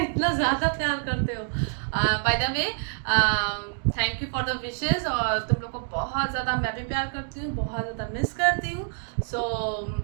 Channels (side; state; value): left; silent; digital silence